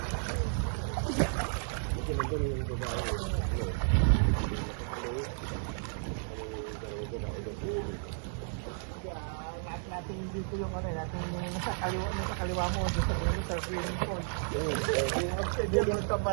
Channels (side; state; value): left; silent; digital silence